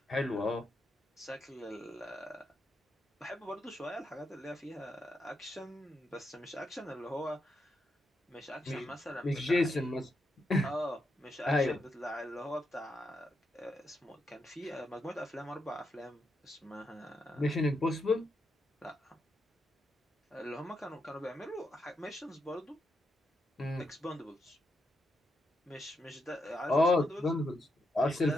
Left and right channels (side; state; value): both; normal; correlation 0.82